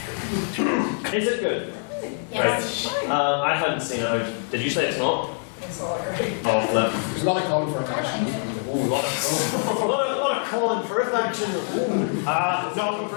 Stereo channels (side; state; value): right; silent; 58 dB below the other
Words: Is it good? Yes. Right. I hadn't seen it. Did you say it's not? It's all right. Oh, flip. There's a lot of calling for action. Ooh, a lot of calling for action. Ooh. No,